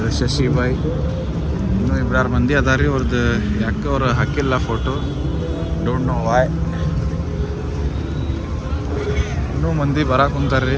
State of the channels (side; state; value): both; identical; correlation 1.00